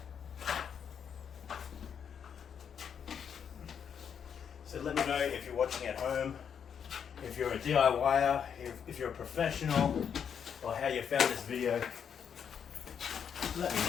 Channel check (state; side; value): quieter; right; 7.7 dB